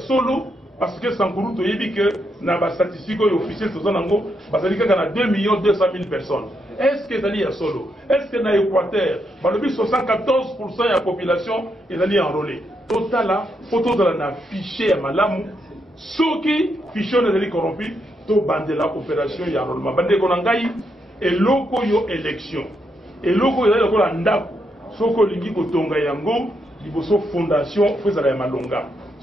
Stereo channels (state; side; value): normal; both; correlation 0.80